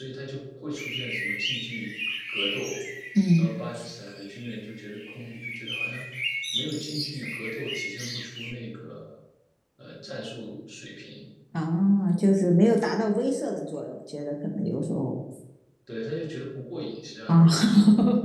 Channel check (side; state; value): both; identical; correlation 1.00